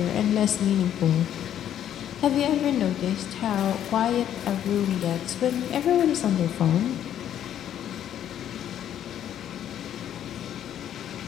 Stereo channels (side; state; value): right; quieter; 10.5 dB